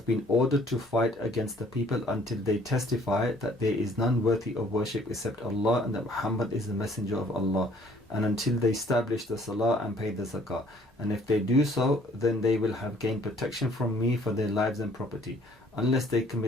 been ordered to fight against the people until they testify that there is none worthy of worship except Allah and that Muhammad is the Messenger of Allah, and until they establish the Salah and pay the Zakah. And if they do so, then they will have gained protection from me for their lives and property, unless they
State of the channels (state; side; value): normal; both; correlation 0.59